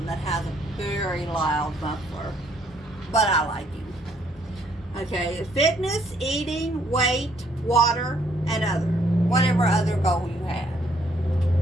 that has a very loud muffler, but I like him. Okay, fitness, eating, weight, water, and whatever other goal you have.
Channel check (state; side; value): normal; both; correlation 0.68